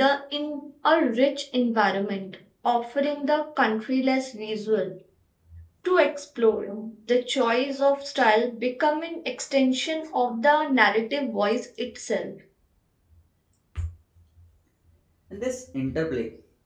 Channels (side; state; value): both; identical; correlation 1.00